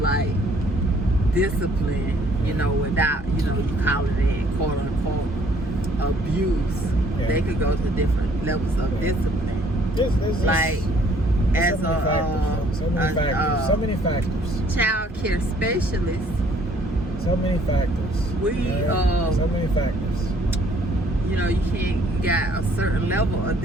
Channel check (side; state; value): both; normal; correlation 0.61